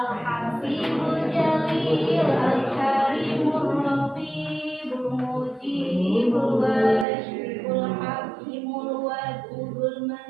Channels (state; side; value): drops out; left; at 7.1 s